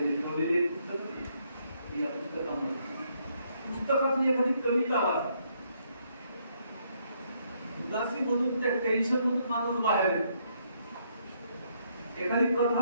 लिखवलेले पुस्तक या पुस्तकामध्ये. पुस्तकातली एखादी कविता वाचा, उदासीमधून त्या टेन्शन मधून माणूस बाहेर येतो. एखादी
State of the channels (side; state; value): both; inverted; correlation -0.72